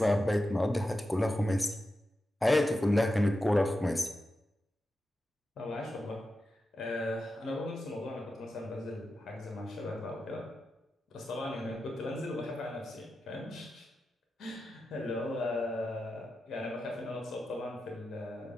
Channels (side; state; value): both; normal; correlation 0.90